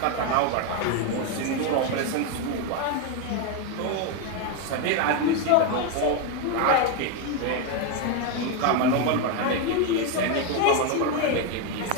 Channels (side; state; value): both; different; correlation 0.02